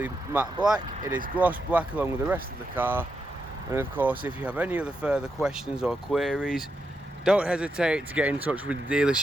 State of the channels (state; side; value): normal; both; correlation 0.84